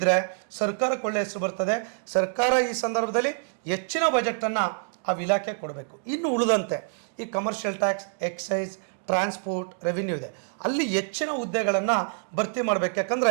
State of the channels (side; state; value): left; silent; digital silence